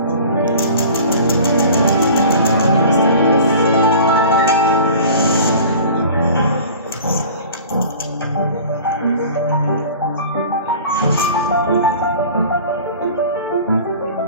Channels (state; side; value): inverted; both; correlation -0.42